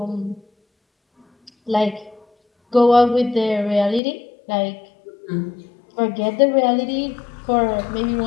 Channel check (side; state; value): right; drops out; at 4.0 s